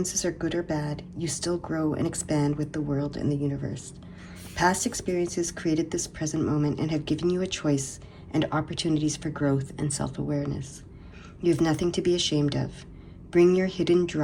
are good or bad, you still grow and expand with the world and the universe. Past experiences created this present moment and have given you a choice and opportunities for growth and self-awareness. You have nothing to be ashamed of. Bring your hidden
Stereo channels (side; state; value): both; identical; correlation 1.00